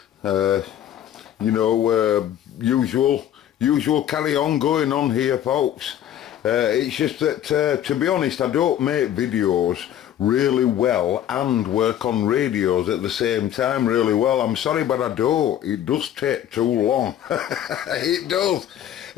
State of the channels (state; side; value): quieter; right; 10.9 dB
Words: usual carry on going on here folks. It's just that to be honest I don't make videos really well and work on radios at the same time really well. I'm sorry but I don't. It does take too long. It